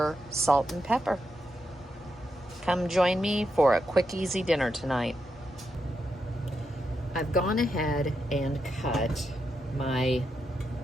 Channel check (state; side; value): normal; both; correlation 0.84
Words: salt and pepper. Come join me for a quick, easy dinner tonight. I've gone ahead and cut my